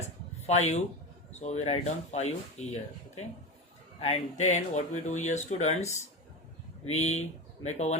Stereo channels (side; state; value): both; normal; correlation 0.23